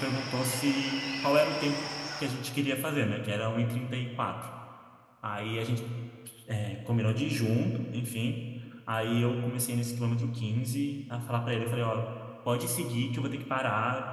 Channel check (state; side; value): identical; both; correlation 1.00